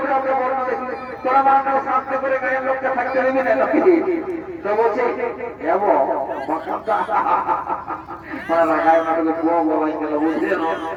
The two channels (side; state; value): both; identical; correlation 1.00